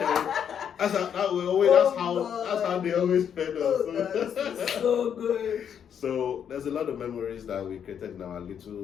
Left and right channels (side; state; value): right; quieter; 8.3 dB